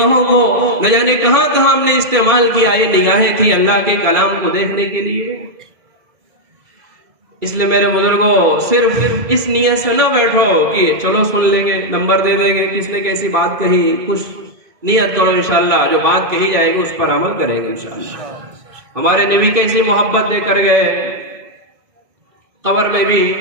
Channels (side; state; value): left; late; 2.3 ms